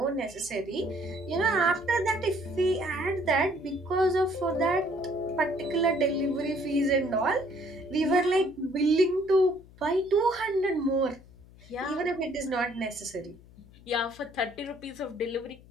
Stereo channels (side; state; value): left; noise; hum, 23 dB below the sound